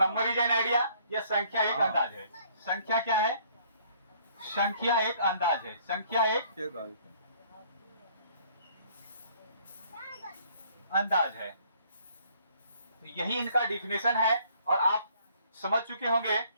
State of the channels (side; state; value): both; inverted; correlation -0.61